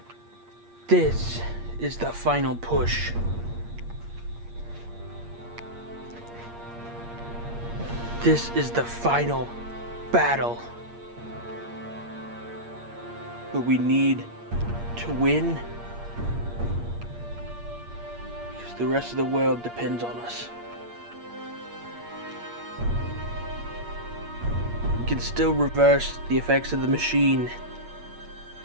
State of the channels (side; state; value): left; late; 8.6 ms